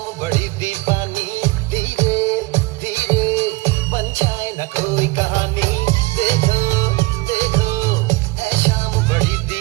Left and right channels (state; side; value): quieter; left; 22.8 dB